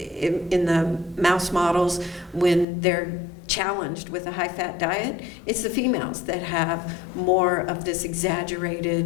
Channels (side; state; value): right; drops out; at 2.7 s